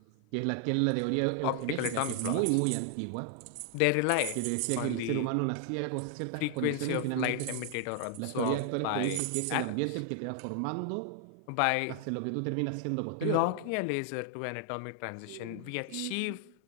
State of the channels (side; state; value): both; different; correlation 0.00